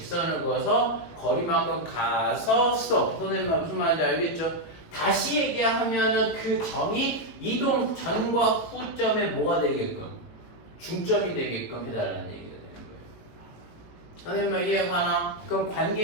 그어서 거리만큼 가서 스톱. 선생님 무슨 말인지 알겠죠? 다시 얘기하면은 그 점이 이동 전과 후점에 뭐가 되게끔 중점이 되게끔 해달라는 얘기가 되는 거예요. 선생님 이해가나? 그럼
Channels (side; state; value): right; late; 18 ms